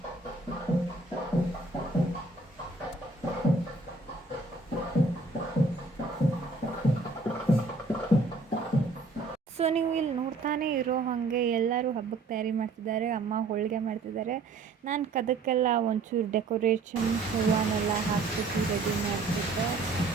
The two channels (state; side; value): quieter; left; 3.5 dB